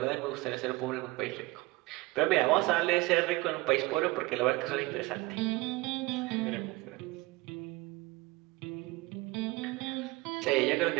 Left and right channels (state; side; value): quieter; left; 21.4 dB